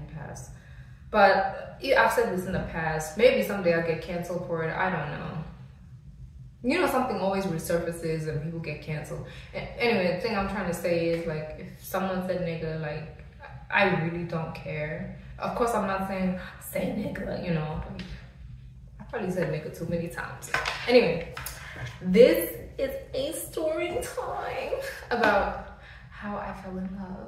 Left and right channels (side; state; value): both; identical; correlation 1.00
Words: pass. But I've said this in the past. Maybe someday I'll get canceled for it. I don't know. You know, something always resurfaces and people get canceled. Anyway, the thing I'm trying to say is, like, if someone said nigga, like, I really don't care. Of course, I'm not saying say nigga, you know. I probably said nigga too many times. Anyway, this is a story time about how I fell in